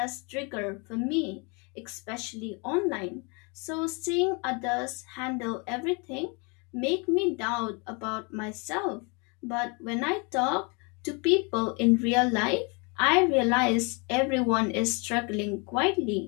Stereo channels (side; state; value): right; quieter; 32.0 dB